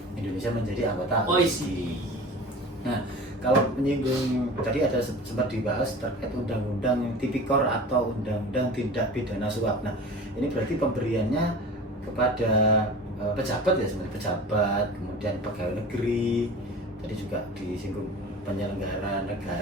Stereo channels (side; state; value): both; normal; correlation 0.37